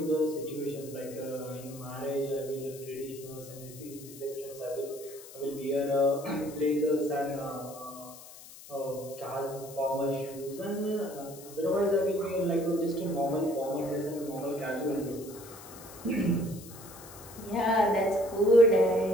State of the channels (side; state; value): left; noise; hiss, 17 dB below the sound